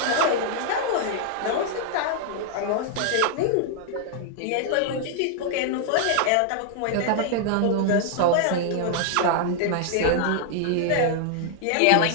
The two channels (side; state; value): both; different; correlation 0.00